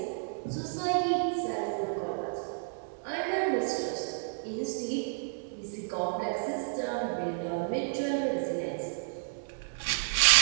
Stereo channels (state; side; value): silent; left; digital silence